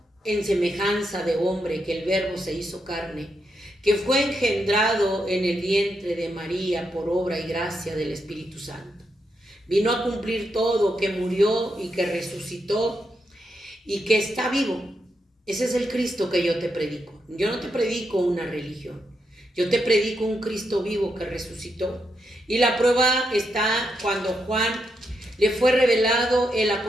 en semejanza de hombre, que el Verbo se hizo carne, que fue engendrado en el vientre de María por obra y gracia del Espíritu Santo. Vino a cumplir todo, que murió y que resucitó y que está vivo. Ese es el Cristo que yo te predico. Yo no te predico una religión. Yo te predico un Cristo vivo que resucitó. Y la prueba está cuando Juan le fue revelado el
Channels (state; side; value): normal; both; correlation 0.82